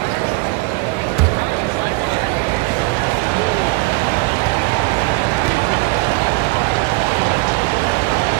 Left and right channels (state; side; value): quieter; left; 24.3 dB